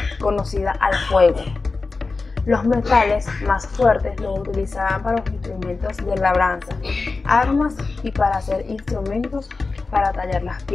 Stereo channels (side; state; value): right; quieter; 3.9 dB